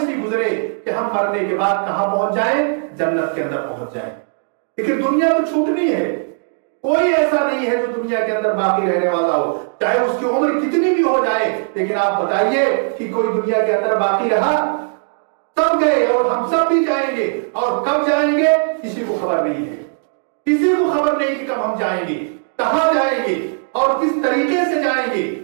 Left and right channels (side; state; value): left; silent; digital silence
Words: گزرے کہ ہم مرنے کے بعد کہاں پہنچ جائیں؟ جنت کے اندر پہنچ جائیں. لیکن دنیا تو چھوٹنی ہے، کوئی ایسا نہیں ہے جو دنیا کے اندر باقی رہنے والا ہو، چاہے اس کی عمر کتنی بھی ہو جائے. لیکن آپ بتائیے کہ کوئی دنیا کے اندر باقی رہا؟ سب گئے اور ہم سب بھی جائیں گے. اور کب جائیں گے کسی کو خبر نہیں ہے. کسی کو خبر نہیں کہ کب ہم جائیں گے، کہاں جائیں گے اور کس طریقے سے جائیں گے.